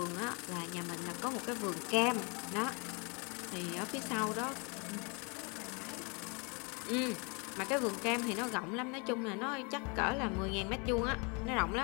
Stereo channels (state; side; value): quieter; right; 32.6 dB